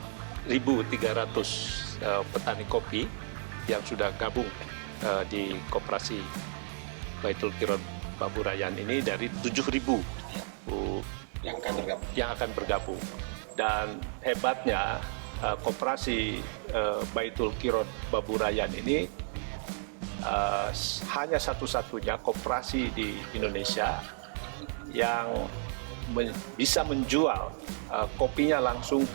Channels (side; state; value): left; silent; 56 dB below the other